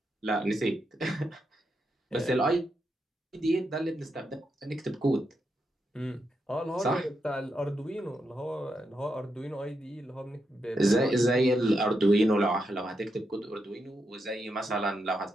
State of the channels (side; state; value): both; normal; correlation 0.83